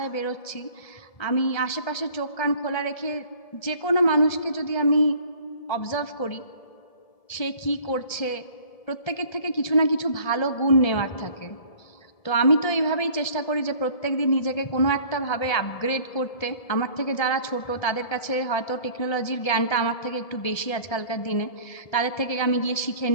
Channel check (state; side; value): late; right; 1.7 ms